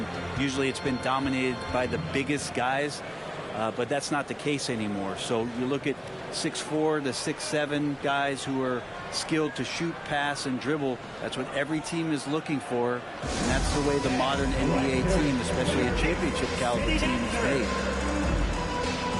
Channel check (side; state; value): both; identical; correlation 1.00